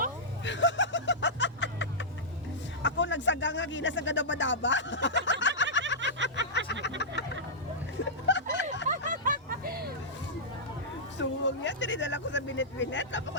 ako nagsaga nga gina sa gadaba-daba. Suwag yan, tinidala ko sa binet-binet, tapos ko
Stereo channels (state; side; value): normal; both; correlation -0.12